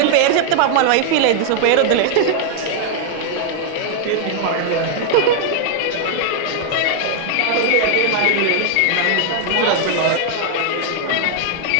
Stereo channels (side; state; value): both; different; correlation 0.00